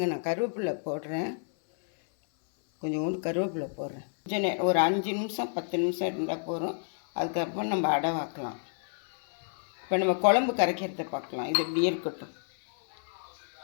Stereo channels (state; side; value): silent; right; 58 dB below the other